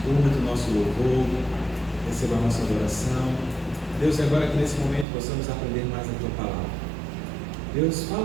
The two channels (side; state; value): left; drops out; at 5.1 s